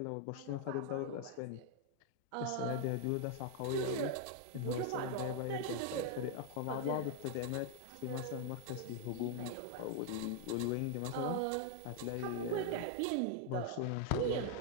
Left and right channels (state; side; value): different; both; correlation 0.00